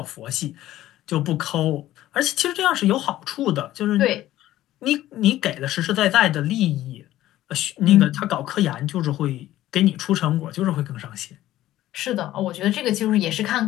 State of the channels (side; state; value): right; quieter; 14.4 dB